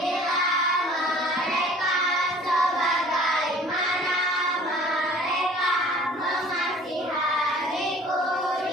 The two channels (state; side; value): normal; both; correlation 0.50